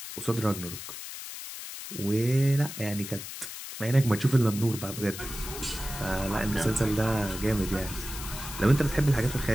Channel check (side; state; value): left; noise; hiss, 10 dB below the sound